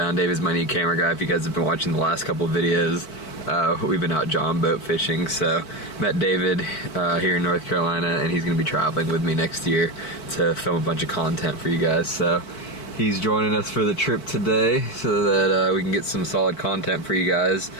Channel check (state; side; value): late; right; 4.5 ms